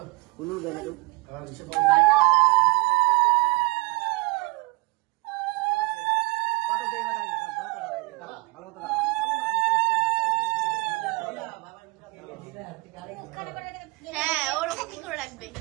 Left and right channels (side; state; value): left; quieter; 24.6 dB